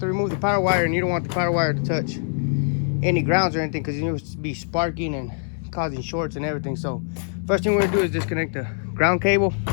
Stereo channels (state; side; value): silent; right; digital silence